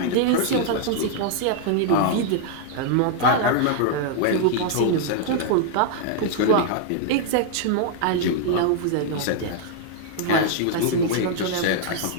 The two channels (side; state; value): both; different; correlation -0.01